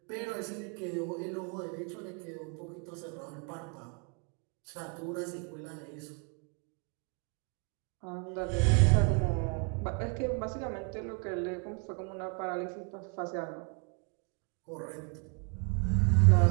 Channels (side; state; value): left; quieter; 35.9 dB